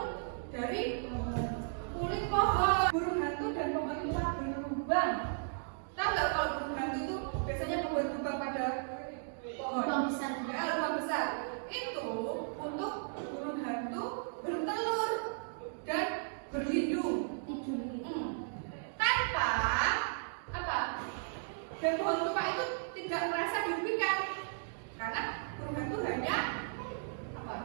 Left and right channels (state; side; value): silent; left; digital silence